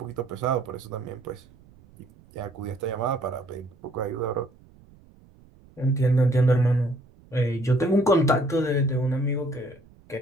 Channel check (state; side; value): noise; right; rumble, 26 dB below the sound